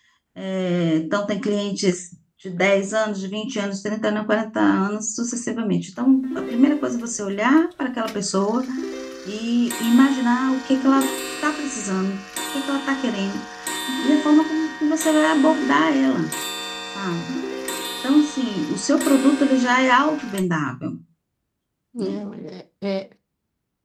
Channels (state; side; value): identical; both; correlation 1.00